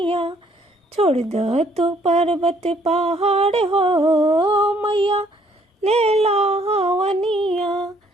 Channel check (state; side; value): normal; both; correlation 0.64